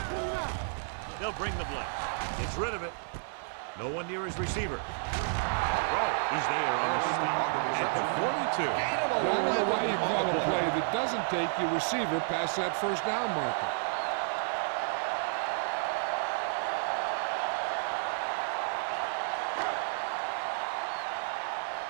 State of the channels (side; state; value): left; silent; 57 dB below the other